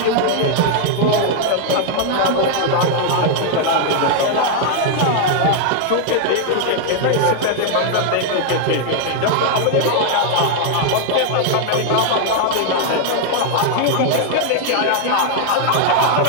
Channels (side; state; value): both; different; correlation 0.00